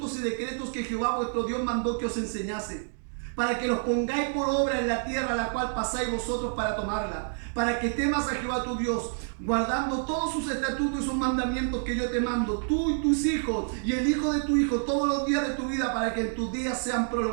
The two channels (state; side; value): silent; left; digital silence